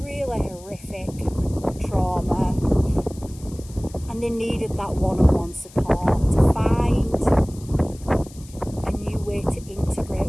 horrific trauma, and they needed that one-on-one support to find a new way to integrate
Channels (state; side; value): noise; left; hiss, 22 dB below the sound